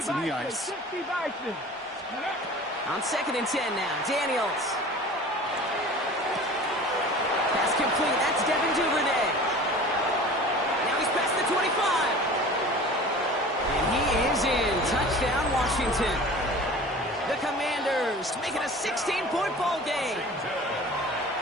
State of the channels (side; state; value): both; normal; correlation 0.41